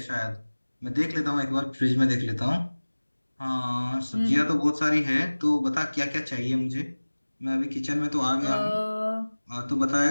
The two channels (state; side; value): inverted; both; correlation -1.00